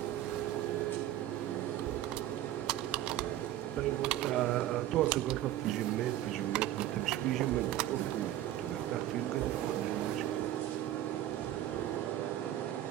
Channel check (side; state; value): left; quieter; 13.2 dB